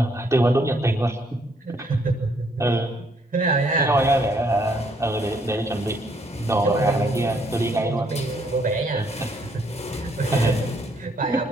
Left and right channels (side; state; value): both; normal; correlation 0.69